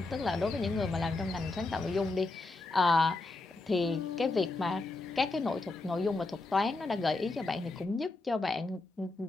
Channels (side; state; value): right; quieter; 3.2 dB